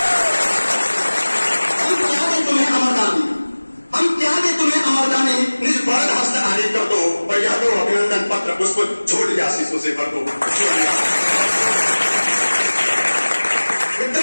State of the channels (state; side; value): inverted; both; correlation -1.00